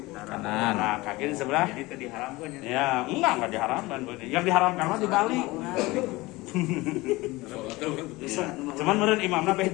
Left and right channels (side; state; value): right; quieter; 21.1 dB